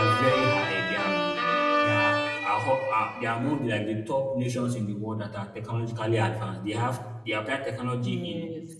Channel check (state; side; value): identical; both; correlation 1.00